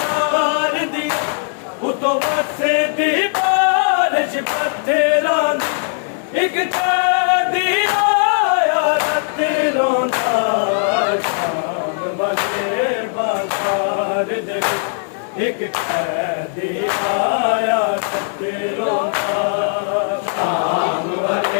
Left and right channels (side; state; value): right; silent; digital silence